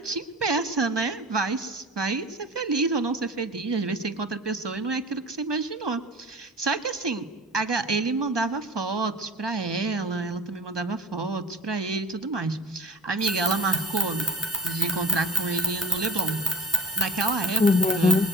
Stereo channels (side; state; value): both; normal; correlation 0.46